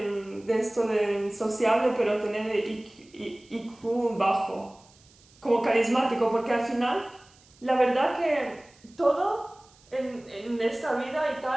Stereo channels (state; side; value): noise; right; hiss, 29 dB below the sound